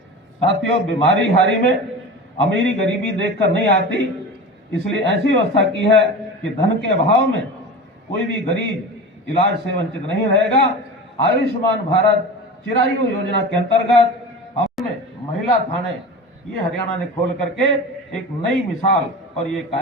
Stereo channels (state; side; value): normal; both; correlation 0.31